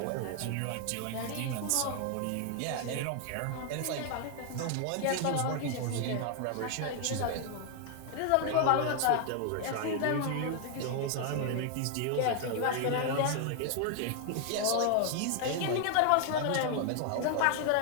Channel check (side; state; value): both; different; correlation 0.00